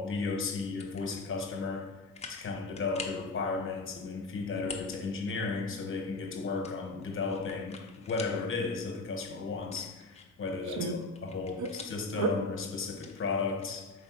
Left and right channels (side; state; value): right; quieter; 3.1 dB